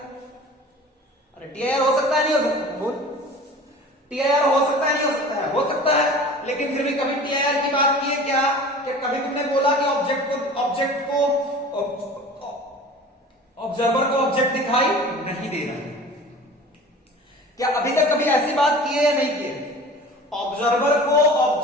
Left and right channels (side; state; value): both; normal; correlation 0.41